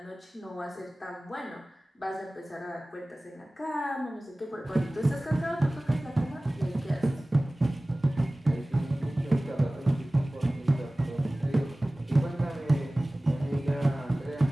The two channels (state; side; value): normal; both; correlation 0.98